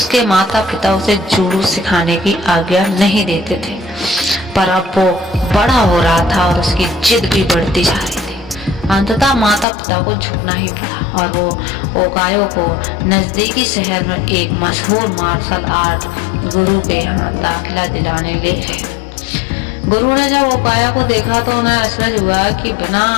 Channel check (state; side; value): drops out; right; at 9.7 s